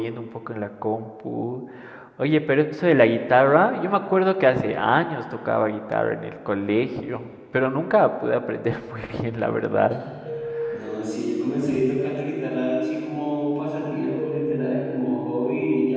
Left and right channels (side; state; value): both; identical; correlation 1.00